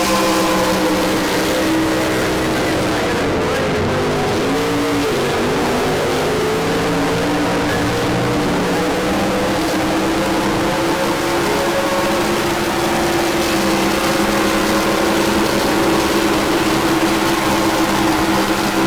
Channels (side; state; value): both; identical; correlation 1.00